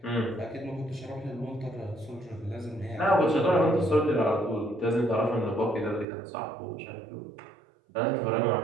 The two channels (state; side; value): drops out; left; at 6.1 s